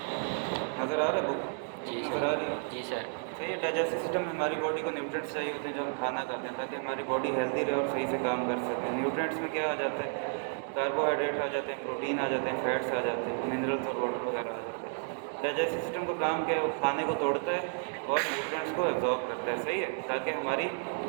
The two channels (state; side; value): silent; left; 56 dB below the other